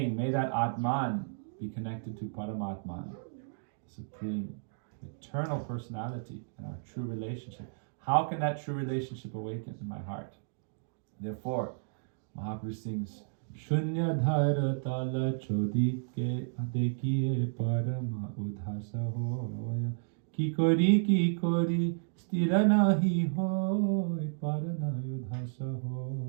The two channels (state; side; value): silent; left; digital silence